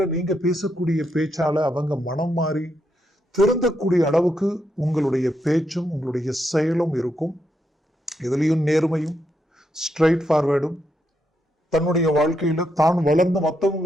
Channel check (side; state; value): both; normal; correlation 0.81